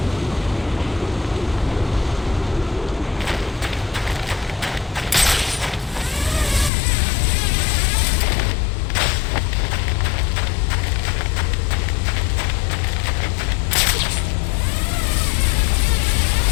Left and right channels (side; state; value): right; drops out; at 6.7 s